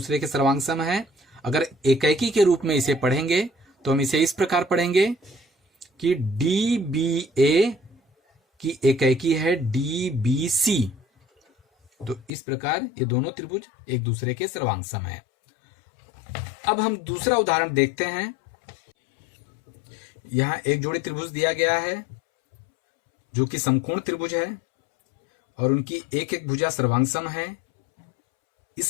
के सर्वांग सम है। अगर एकैकी के रूप में इसे पढ़ेंगे तो हम इसे इस प्रकार पढ़ेंगे कि डी बी ए की एकैकी है डी बी सी। तो इस प्रकार ये दोनों त्रिभुज एक दूसरे के सर्वांग सम है। अब हम दूसरा उदाहरण देखते हैं। यहां एक जोड़ी त्रिभुज दिया गया है जो कि समकोण त्रिभुज है और उनकी एक एक भुजा सर्वांग सम है,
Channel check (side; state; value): right; drops out; at 12.3 s